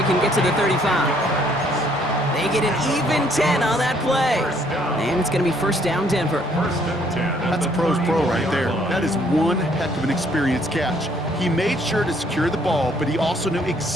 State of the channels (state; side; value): normal; both; correlation 0.65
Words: can get to the 35. They get an even 10 on that play. And it's going to be first down Denver. First and 10. That's a pro's pro right there. That is one heck of an experienced catch. He made sure to secure the ball, but he also knew